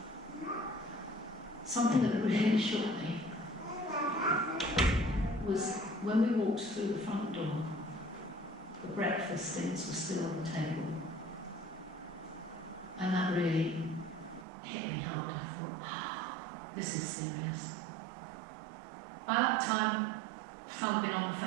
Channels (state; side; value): drops out; left; at 14.5 s